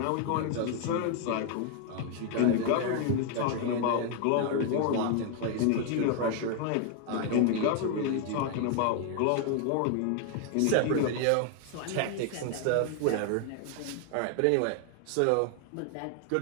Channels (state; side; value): different; both; correlation 0.00